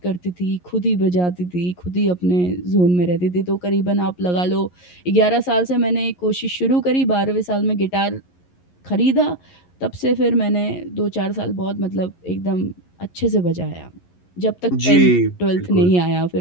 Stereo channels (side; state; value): right; late; 11 ms